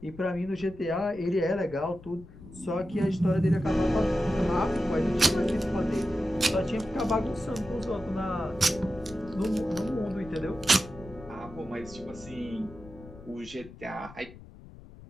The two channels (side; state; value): left; noise; rumble, 18 dB below the sound